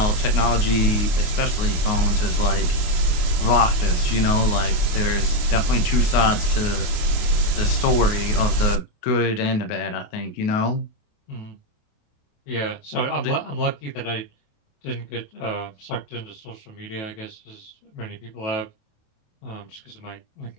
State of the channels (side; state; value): right; late; 28 ms